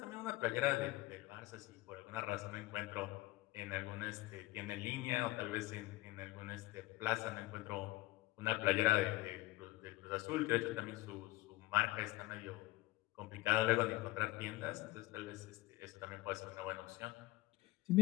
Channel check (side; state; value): right; quieter; 19.2 dB